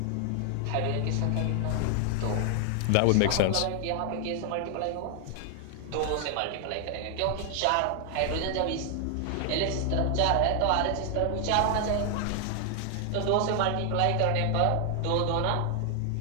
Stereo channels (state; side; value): different; both; correlation 0.00